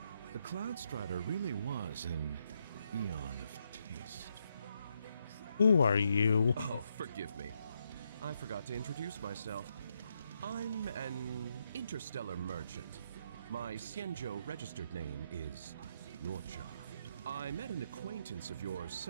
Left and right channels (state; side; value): inverted; both; correlation -0.79